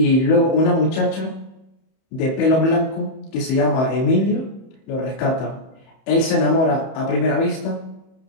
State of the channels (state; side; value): late; right; 31 ms